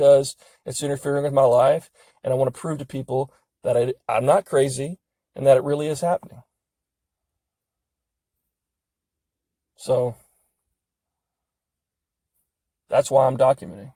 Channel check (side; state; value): both; identical; correlation 1.00